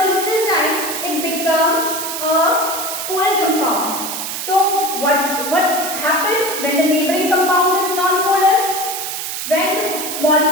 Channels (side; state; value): right; noise; hiss, 5 dB below the sound